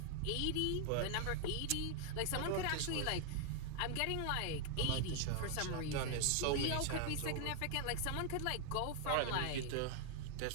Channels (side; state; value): both; different; correlation 0.00